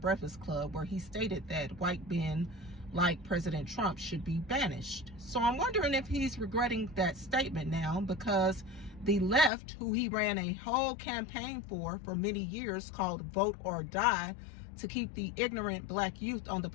Club where he stated that white men like President Trump should be banished. So I'm wondering if he's regretting that statement now, because the left, who he ran a whole campaign for many years called Vote or Die, to keep the ignorant black youth on the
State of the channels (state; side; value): drops out; right; at 9.5 s